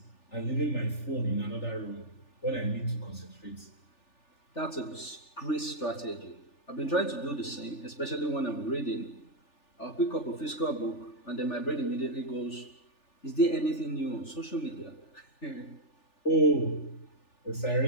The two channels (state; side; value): late; right; 3.4 ms